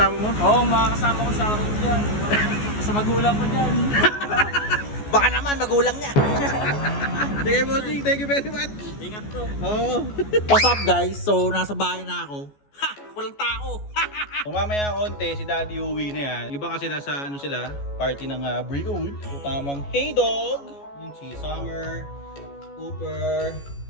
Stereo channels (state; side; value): late; right; 14 ms